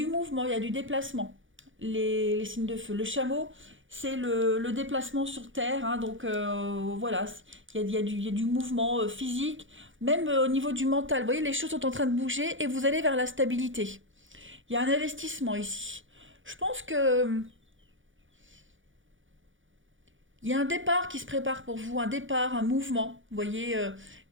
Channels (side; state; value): left; late; 0.57 ms